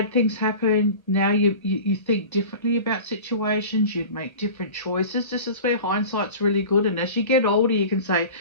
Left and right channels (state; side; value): late; right; 1.2 ms